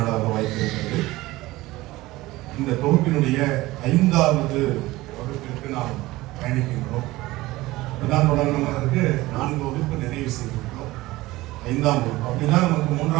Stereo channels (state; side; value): quieter; left; 18.8 dB